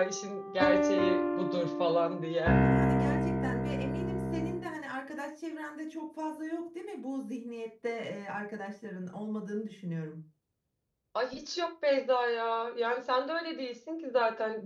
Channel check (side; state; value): both; identical; correlation 1.00